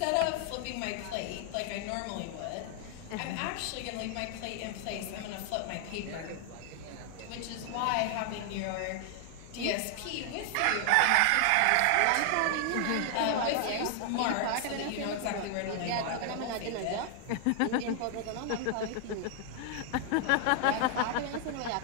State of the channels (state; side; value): different; both; correlation 0.00